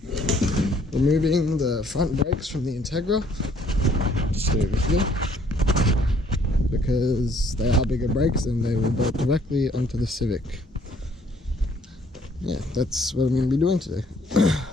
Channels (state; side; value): normal; both; correlation 0.63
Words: removing the front brakes from the Integra, just over here, because they are bigger brakes and they will bolt directly onto the Civic. Yeah, that's what I'm going to be doing today.